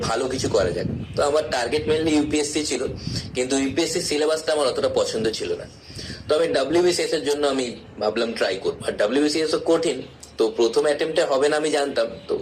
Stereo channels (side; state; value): both; identical; correlation 1.00